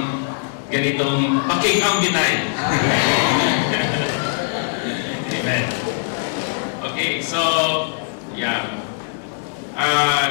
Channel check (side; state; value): right; silent; digital silence